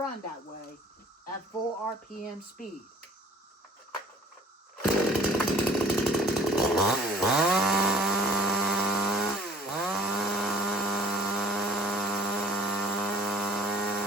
that way at full RPM speed.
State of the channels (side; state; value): both; normal; correlation 0.54